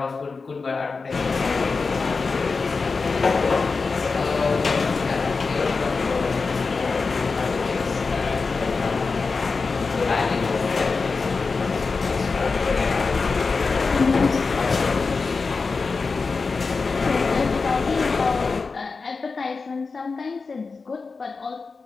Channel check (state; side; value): quieter; right; 4.4 dB